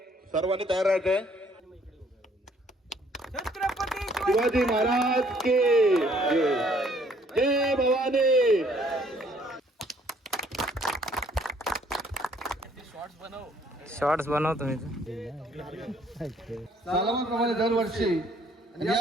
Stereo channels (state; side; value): normal; both; correlation 0.63